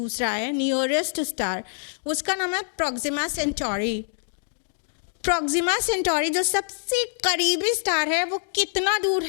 है, नियरेस्ट स्टार, उसका नाम है प्रोक्सिमा सेंटोरी। प्रोक्सिमा सेंटोरी जो सबसे करीबी स्टार है वो कितना दूर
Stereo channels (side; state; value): right; silent; digital silence